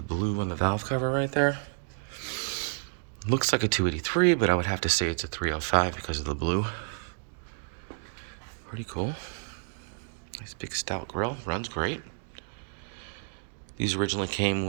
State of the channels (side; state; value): left; silent; 58 dB below the other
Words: blue on the valve cover right there. Looks like a 283, but I would have to say it's a 305 because of the blue. Pretty cool. Nice big stout grill, runs great. These originally came